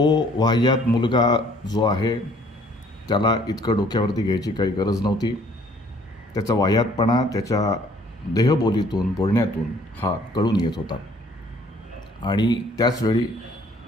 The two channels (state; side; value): normal; both; correlation 0.59